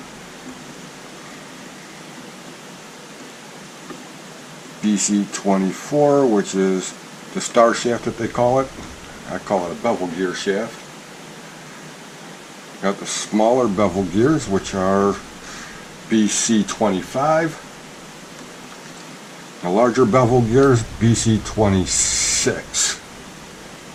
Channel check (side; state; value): both; identical; correlation 1.00